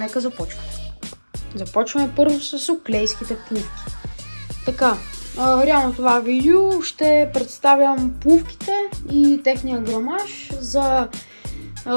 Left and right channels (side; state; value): both; inverted; correlation -1.00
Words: започваме. Започваме първо с оклейските пувки. Така, реално това видео ще представям пувките и техния грамаж, за